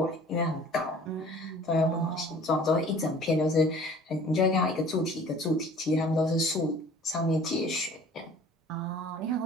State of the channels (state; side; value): normal; both; correlation 0.49